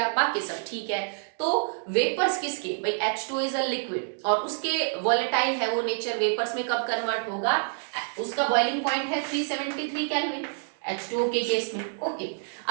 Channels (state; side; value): silent; left; digital silence